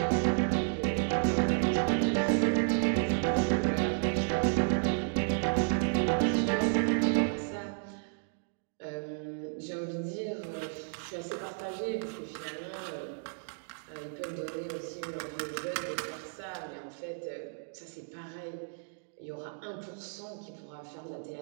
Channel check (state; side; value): silent; left; digital silence